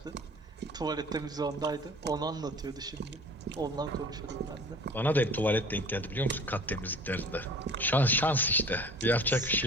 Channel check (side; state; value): both; normal; correlation 0.45